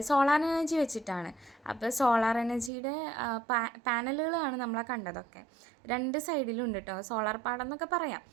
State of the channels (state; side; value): drops out; left; at 2.7 s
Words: സോളാർ എനർജി വെച്ചിട്ടാണ്. അപ്പോൾ സോളാർ എനർജിയുടെ പാനലുകളാണ് നമ്മളെ കണ്ടതൊക്കെ. രണ്ട് സൈഡിലും ഉണ്ട് കേട്ടോ, സോളാർ പാടം എന്നൊക്കെ പറയാം.